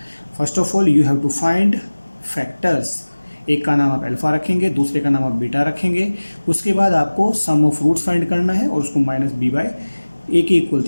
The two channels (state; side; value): inverted; both; correlation -1.00